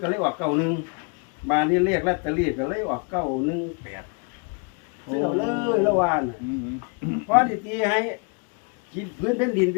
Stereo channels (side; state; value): right; quieter; 35.6 dB